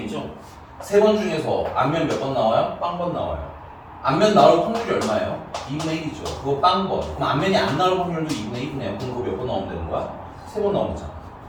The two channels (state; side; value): identical; both; correlation 1.00